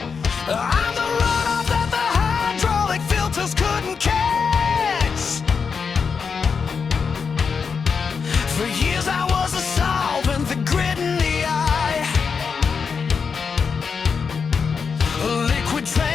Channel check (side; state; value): right; quieter; 5.7 dB